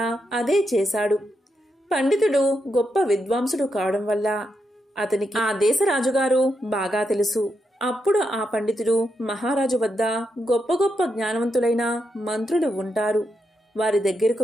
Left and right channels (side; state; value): both; normal; correlation 0.83